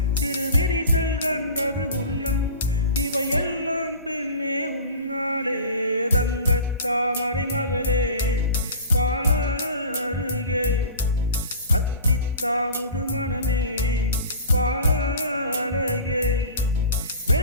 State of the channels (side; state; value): both; inverted; correlation -0.38